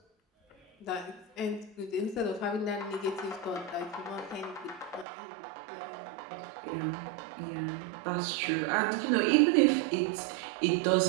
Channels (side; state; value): left; drops out; at 5.1 s